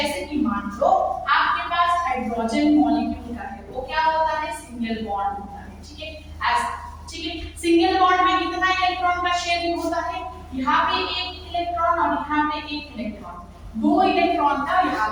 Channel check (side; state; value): both; identical; correlation 1.00